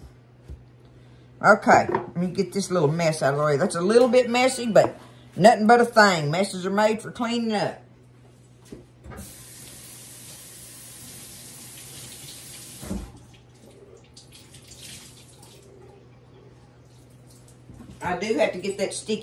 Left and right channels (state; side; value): identical; both; correlation 1.00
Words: Okay, let me get this little mess out of the way. That's a little bit messy, but nothing but a thing. Messes are made for cleaning up. I do have to get that